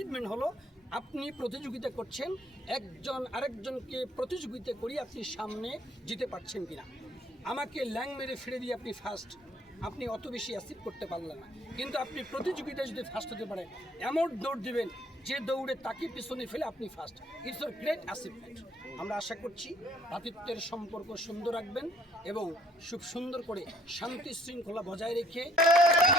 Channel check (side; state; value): both; normal; correlation 0.62